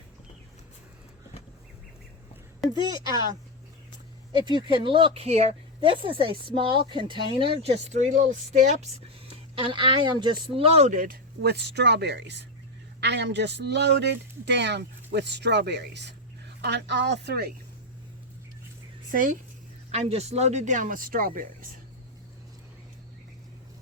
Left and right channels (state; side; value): normal; both; correlation 0.05